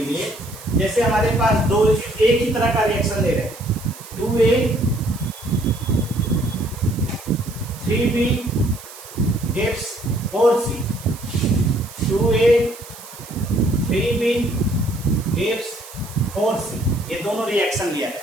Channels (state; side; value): noise; right; hiss, 17 dB below the sound